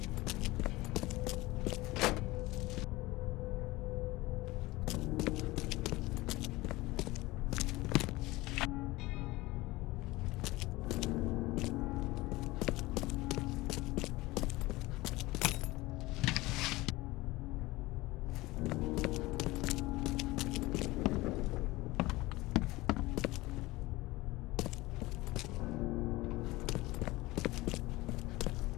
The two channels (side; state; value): right; quieter; 20.1 dB